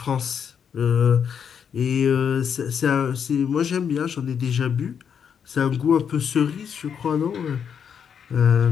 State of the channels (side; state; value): right; quieter; 7.5 dB